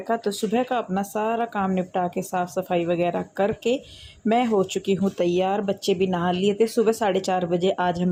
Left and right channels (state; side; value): identical; both; correlation 1.00